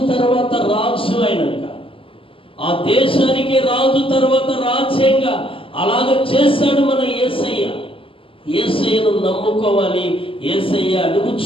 తర్వాత రాజు అయినాక ఆ దేశానికి రాజు తర్వాత రాజ్యంగా అలాగ చేశాడు మన యేసయ్యను నమ్ముకోవాలి. యేసయ్య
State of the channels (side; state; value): right; late; 0.26 ms